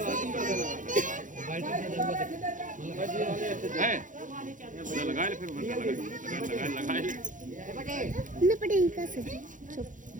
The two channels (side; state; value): left; late; 0.37 ms